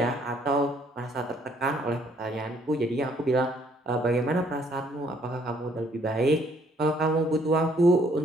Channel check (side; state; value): both; normal; correlation 0.64